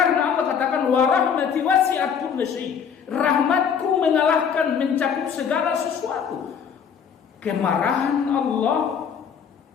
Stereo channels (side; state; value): right; quieter; 7.2 dB